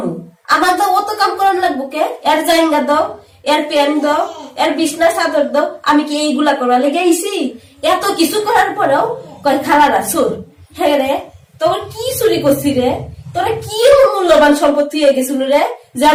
আমার তো অত কাম করানো লাগবো কে? এর জাইঙ্গা দাও, এর প্যান দাও, এর বিছনা চাদর দাও। আমি কি এইগুলা করা লেগে আইছি? এত কিছু করার পরেও কয় খালারা চোর। হ্যাঁ রে, তোর কি চুরি করছি রে? তোরা কি মূল্যবান সম্পত্তি হয়ে গেছিল রে যে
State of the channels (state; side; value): identical; both; correlation 1.00